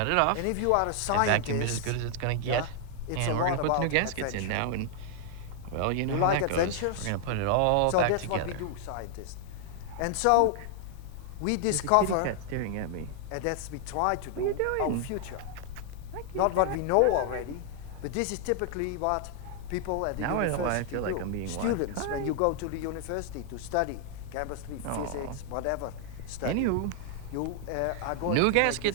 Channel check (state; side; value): different; both; correlation 0.00